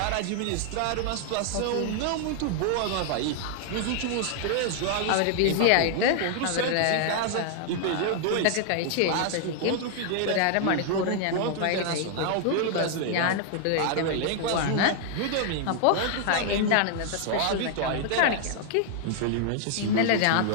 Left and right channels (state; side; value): different; both; correlation 0.00